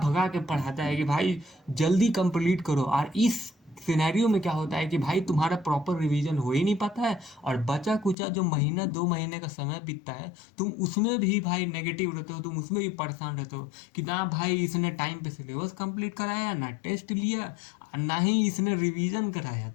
के पढ़ाता है कि भाई जल्दी कंप्लीट करो। और इस सिनेरियो में क्या होता है कि भाई तुम्हारा प्रॉपर रिवीजन हो ही नहीं पाता है, और बचा कुचा जो 1-2 महीने का समय बीतता है तुम उसमें भी भाई नेगेटिव रहते हो, तुम उसमें भी परेशान रहते हो कि ना भाई इसने टाइम पे सिलेबस कंप्लीट कराया, ना टेस्ट लिया, ना ही इसने रिवीजन कराया,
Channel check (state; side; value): drops out; right; at 8.2 s